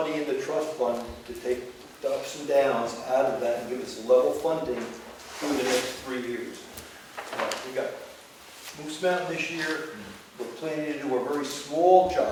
in the trust fund to take the ups and downs out of that and give us level funding through the next 3 years. We got Moose Mountain this year. We're planning to do a very small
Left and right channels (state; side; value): identical; both; correlation 1.00